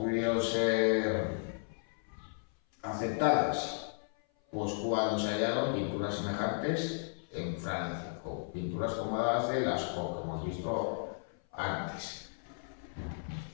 ser aceptadas? Pues cuando se hallaron pinturas semejantes en Francia, o pinturas como las de Lascaux, que hemos visto antes.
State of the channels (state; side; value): silent; right; 55 dB below the other